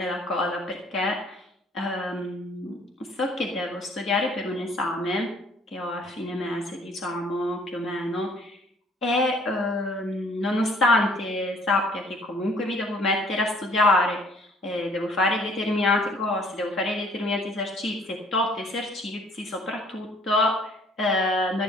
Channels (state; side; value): normal; both; correlation 0.58